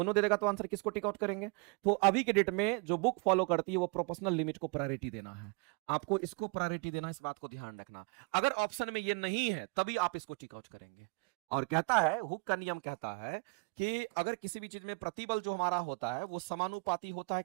दे देगा तो आंसर किसको टिक आउट करेंगे? तो अभी के डेट में जो बुक फॉलो करती है वो प्रोपोर्शनल लिमिट को प्रायोरिटी देना है, आपको इसको प्रायोरिटी देना, इस बात को ध्यान रखना। अगर ऑप्शन में ये नहीं है तभी आप इसको टिक आउट करेंगे। और कहता है हुक का नियम कहता है कि अगर किसी भी चीज में प्रतिबल जो हमारा होता है वो समानुपाती होता है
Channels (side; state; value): left; quieter; 33.2 dB